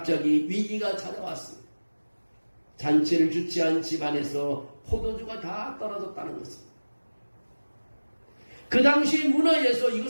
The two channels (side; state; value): both; inverted; correlation -1.00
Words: 위기가 찾아왔습니다. 잔치를 주최한 집안에서 포도주가 다 떨어졌다는 것입니다. 그 당시 문화에서